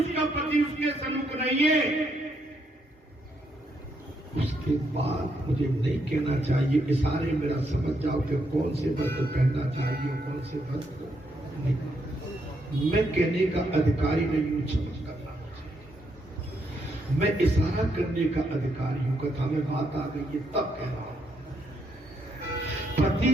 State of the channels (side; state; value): both; normal; correlation 0.77